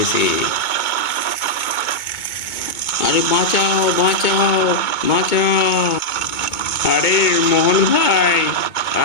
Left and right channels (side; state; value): right; late; 2.2 ms